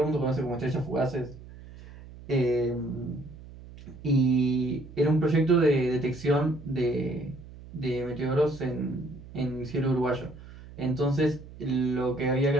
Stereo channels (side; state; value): right; noise; hum, 17 dB below the sound